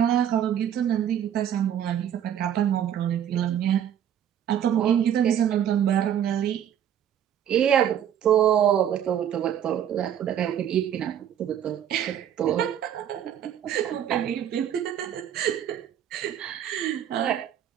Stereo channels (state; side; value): quieter; left; 9.7 dB